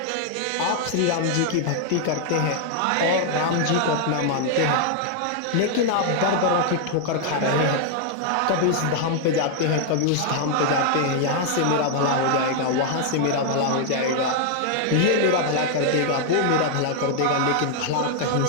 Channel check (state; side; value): different; both; correlation 0.00